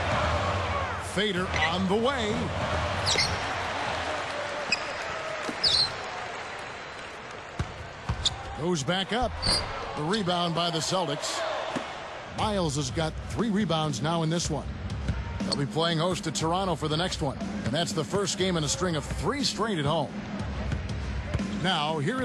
Fader on the way. Goes back up. The rebound by the Celtics. Miles has got 3 rebounds now in this one. They'll be playing host to Toronto for the next one. And that's the first game in a string of 3 straight at home. Now, here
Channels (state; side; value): identical; both; correlation 1.00